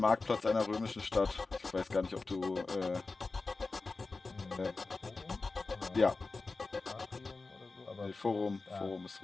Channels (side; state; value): right; quieter; 3.8 dB